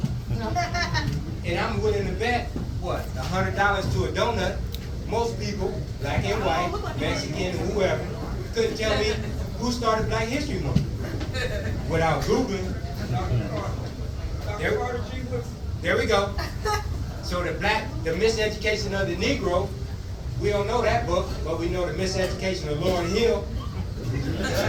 And I'm willing to bet, what, $100 to a donut, most people, black and white, Mexican, whoever, couldn't tell me who started Black History Month without Googling. There we go. So the miseducation of the Negro, we don't know that book, but we know the miseducation of Lauryn Hill.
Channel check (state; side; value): identical; both; correlation 1.00